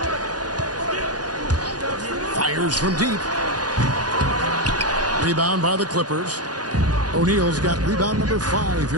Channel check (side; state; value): left; late; 0.69 ms